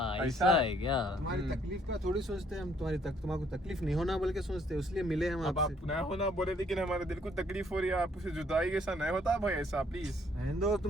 ऐसा है क्या तुम्हारी तकलीफ का थोड़ी सोचते हैं हम, तुम्हारी तकलीफ नहीं होना बोल के सोचते हैं, इसलिए मिले हम अब आपसे। आप ना होना बोले लेकिन हमारे दिल को तकलीफ हो रही है, आपसे जुदाई कैसा नहीं होता भाई ऐसा प्लीज। दो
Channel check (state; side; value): normal; both; correlation 0.65